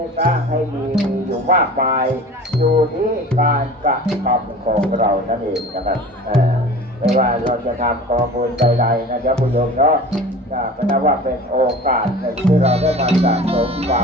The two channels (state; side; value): normal; both; correlation 0.39